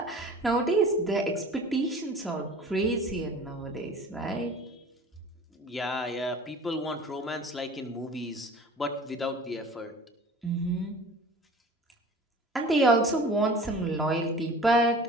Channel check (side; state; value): both; normal; correlation 0.43